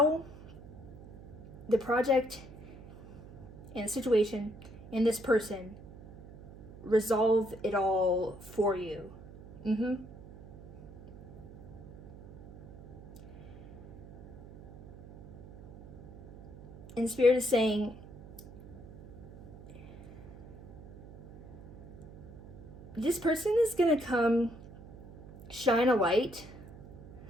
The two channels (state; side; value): noise; right; hum, 16 dB below the sound